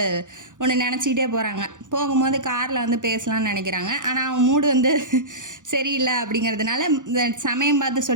ஒன்று நினச்சிக்கிட்டே போகிறாங்க. போகும்போது காரில் வந்து பேசலாம்னு நினைக்கிறாங்க, ஆனால் அவன் மூடு வந்து சரியில்லை அப்படிங்கிறதுனால சமயம் பார்த்து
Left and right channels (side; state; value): left; late; 0.87 ms